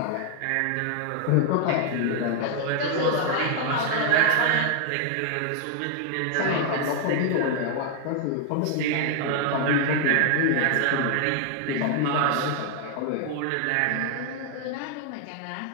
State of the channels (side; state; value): both; different; correlation 0.00